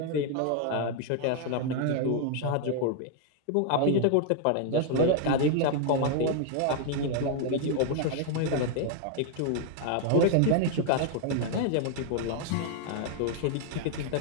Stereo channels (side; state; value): both; different; correlation 0.00